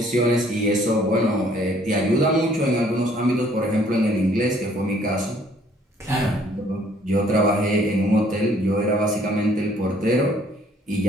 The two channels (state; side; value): normal; both; correlation 0.61